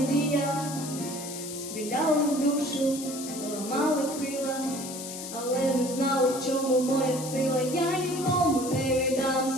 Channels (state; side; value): noise; left; hiss, 9 dB below the sound